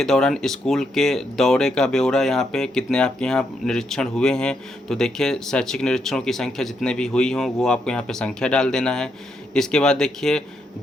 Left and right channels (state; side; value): normal; both; correlation 0.79